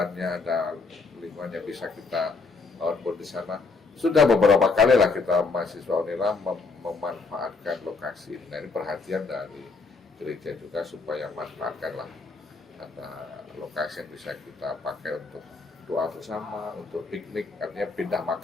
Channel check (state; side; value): quieter; right; 4.2 dB